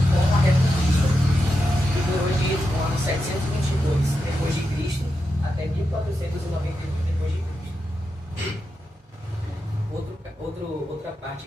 como a Reconquista, que durou do ano 722 depois de Cristo até 1491 depois de Cristo. Outra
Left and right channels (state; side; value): normal; both; correlation 0.88